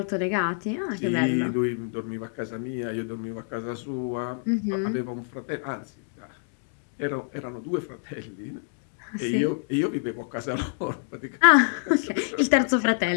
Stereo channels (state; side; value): silent; right; digital silence